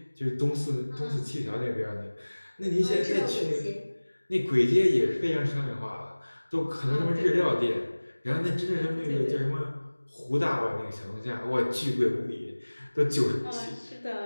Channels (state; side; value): inverted; both; correlation -1.00